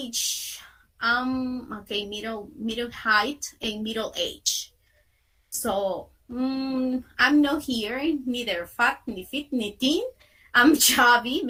okay, middle height and middle age. So I'm not here, neither fat, ni fit, ni thin. I'm chubby,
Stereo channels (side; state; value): both; identical; correlation 1.00